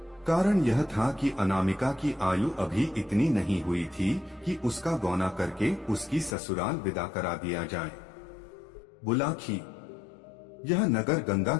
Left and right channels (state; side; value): drops out; right; at 6.4 s